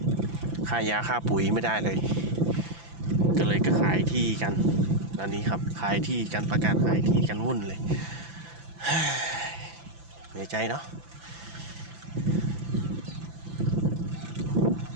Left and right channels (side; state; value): left; late; 5.9 ms